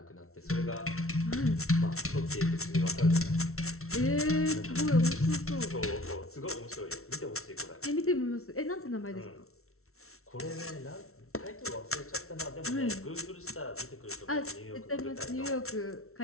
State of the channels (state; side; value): late; right; 0.63 ms